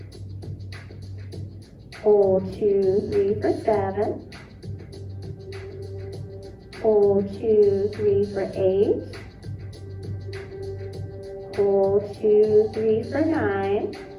Hold 2, 3 for 7. Hold 2, 3 for 8. Hold 2, 3 for 9.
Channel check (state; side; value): identical; both; correlation 1.00